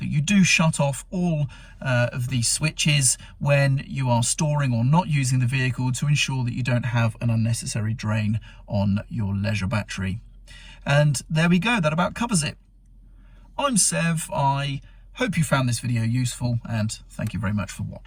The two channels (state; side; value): identical; both; correlation 1.00